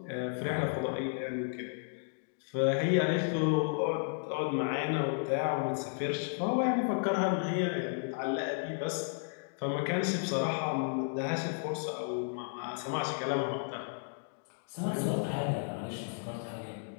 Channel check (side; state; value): right; silent; digital silence